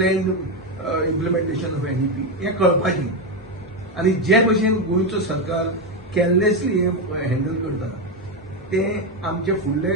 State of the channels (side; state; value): both; normal; correlation 0.09